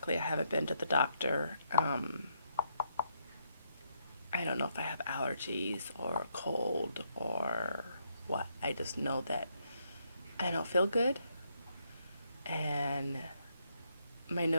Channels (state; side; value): inverted; both; correlation -0.76